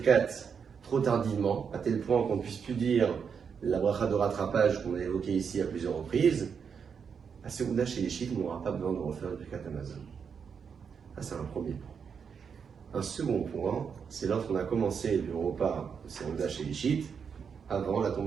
trop tardivement, à tel point qu'on ne puisse plus dire la bracha de rattrapage qu'on a évoquée ici à plusieurs reprises, à Serouda chez les chiites, on n'aura pas besoin de refaire le Birkat Hamazon. Ça, c'est un premier point. Un second point, c'est lorsqu'on a commencé le repas de Serouda chez les chiites avant la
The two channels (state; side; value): quieter; left; 6.6 dB